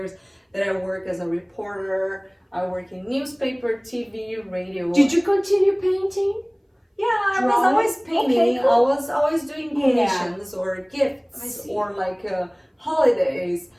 that I worked as a reporter. I work in newspaper, TV, radio. Did you continue painting? Yeah, I was always painting. Okay, cool. I was always doing commissions or gifts or like holidays.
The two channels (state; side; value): identical; both; correlation 1.00